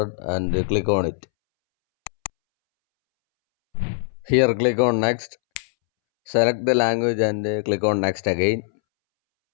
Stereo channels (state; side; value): silent; right; 64 dB below the other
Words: and click on it. Here click on next, select the language and click on next again.